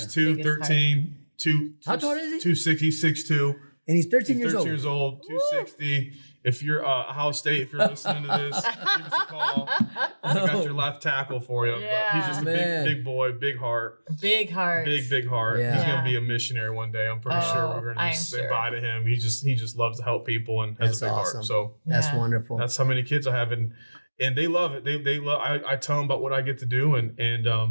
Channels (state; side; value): inverted; both; correlation -1.00